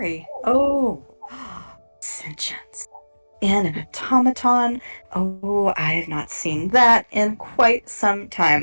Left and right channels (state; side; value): inverted; both; correlation -1.00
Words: Oh, sentience. In an automaton. Oh, I have not seen that in quite some